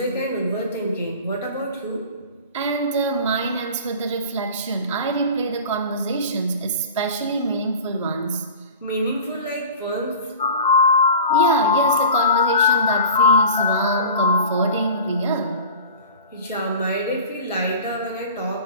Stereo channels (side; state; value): both; inverted; correlation -0.38